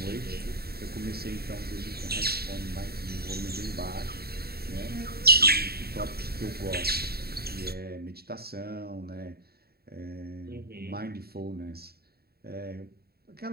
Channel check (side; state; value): left; late; 0.45 ms